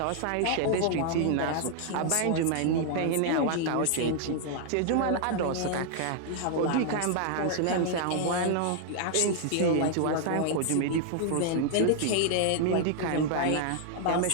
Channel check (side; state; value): both; different; correlation 0.00